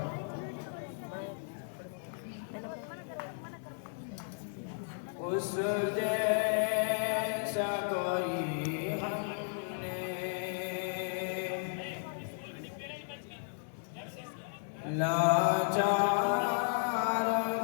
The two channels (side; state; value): right; silent; digital silence